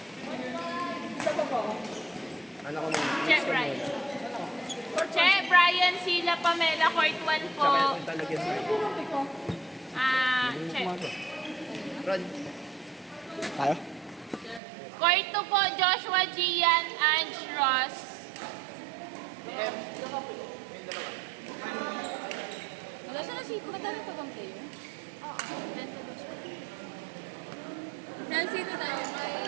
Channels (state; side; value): drops out; left; at 14.6 s